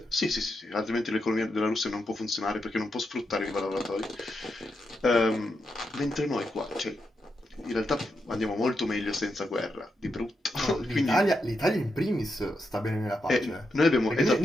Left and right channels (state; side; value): normal; both; correlation 0.84